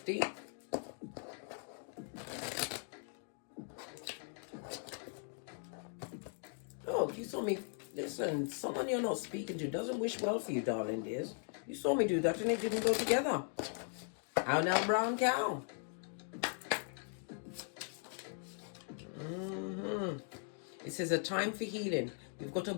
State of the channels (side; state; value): right; silent; 52 dB below the other